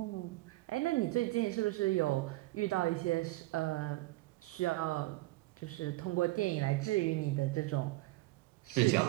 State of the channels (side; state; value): left; quieter; 20.0 dB